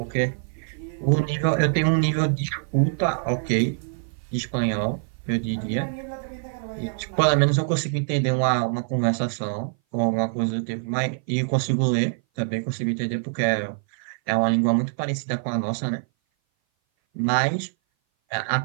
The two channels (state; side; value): silent; left; 58 dB below the other